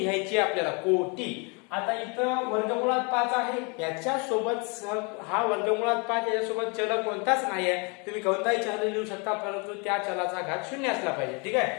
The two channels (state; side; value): quieter; right; 32.5 dB